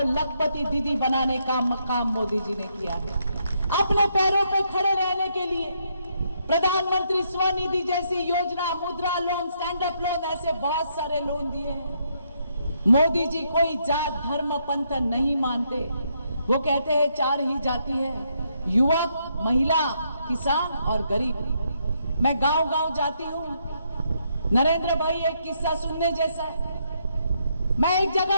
लखपति दीदी बनाने का काम मोदी जी ने किया है। अपने पैरों पे खड़े रहने के लिए प्रधानमंत्री स्वनिधि जैसी योजना, मुद्रा लोन, स्टैंड अप लोन, ऐसे बहुत सारे लोन दिए हैं। मोदी जी कोई जात धर्म पंथ नहीं मानते। वो कहते हैं 4 ही जाति है, युवक, महिला, किसान और गरीब। मैं गांव गांव जाती हूं। नरेंद्र भाई एक किस्सा सुनने जैसा है। मैं एक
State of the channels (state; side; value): inverted; both; correlation -0.76